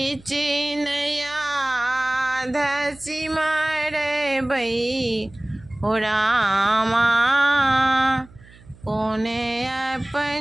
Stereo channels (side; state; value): right; noise; hum, 24 dB below the sound